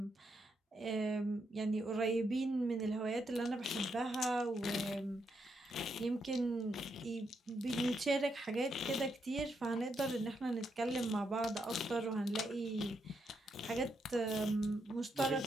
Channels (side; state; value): both; normal; correlation 0.80